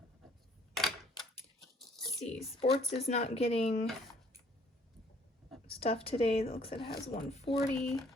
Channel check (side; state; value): both; normal; correlation 0.60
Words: Let's see, sports is not getting stuff today. It looks like it has 140.